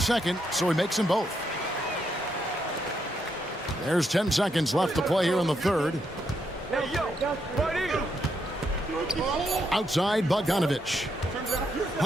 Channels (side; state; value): both; normal; correlation 0.79